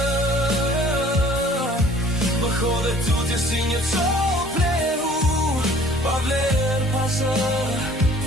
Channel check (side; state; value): both; normal; correlation 0.53